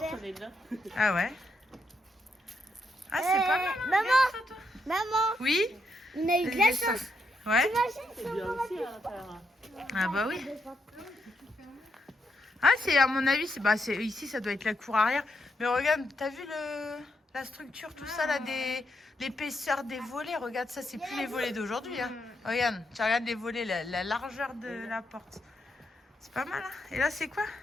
on est là. Ah ouais? Ah, c'est pas mal. hein, maman. regarde ça, toi. Maman, Oui? on a eu de la chance. Ouais? C'est bien aussi à l'intérieur. Ah bah oui. Ah, c'est à mon avis, ici, ça doit être la cour arrière. Mais regarde, t'as vu la structure, tout ça, là, l'épaisseur des volets. Regarde ça, c'est plus les volets d'aujourd'hui. Hein. Regarde, tu regardes les volets, la largeur de la porte. C'est pas mal, hein. Et là, c'est quoi?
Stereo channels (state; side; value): normal; both; correlation 0.80